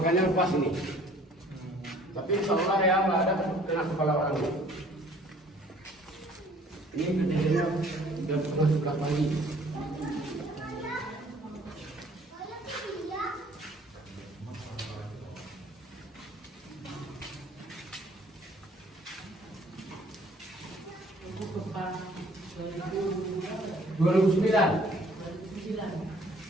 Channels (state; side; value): normal; both; correlation 0.56